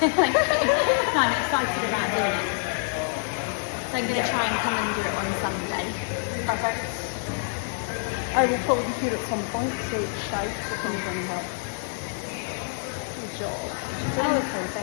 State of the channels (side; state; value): right; silent; digital silence